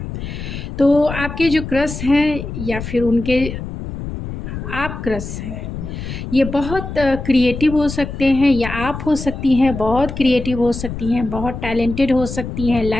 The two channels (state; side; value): noise; left; rumble, 8 dB below the sound